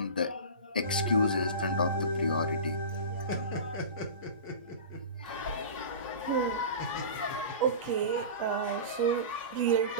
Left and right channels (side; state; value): both; inverted; correlation -0.31